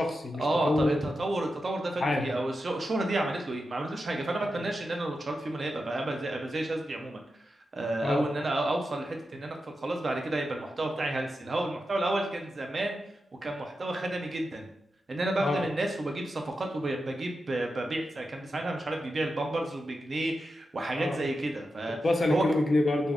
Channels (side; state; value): both; normal; correlation 0.89